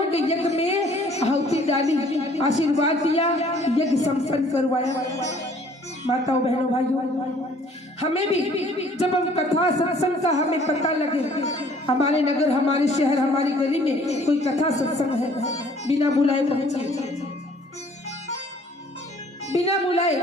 के यज्ञ में आहुति डाली, आशीर्वाद दिया, यज्ञ संपन्न करवाया। माताओं बहनों भाइयों, हमें भी जब हम कथा सत्संग का हमें पता लगे, हमारे नगर हमारे शहर हमारी गली में कोई कथा सत्संग है, बिना बुलाए पहुंचिए, बिना बुलाए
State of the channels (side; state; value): both; normal; correlation 0.57